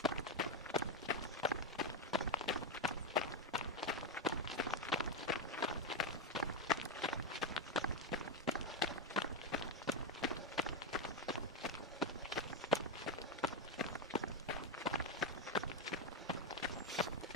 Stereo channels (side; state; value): both; normal; correlation 0.06